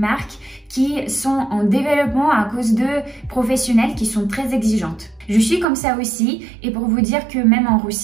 qui sont en développement à cause de professionnels qui sont très exigeantes. Je suis comme ça aussi et pour vous dire que même en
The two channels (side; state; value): left; drops out; at 5.7 s